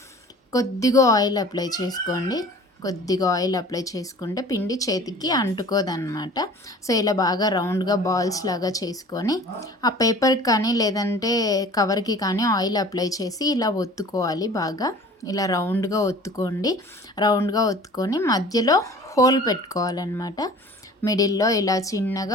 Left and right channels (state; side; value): normal; both; correlation 0.45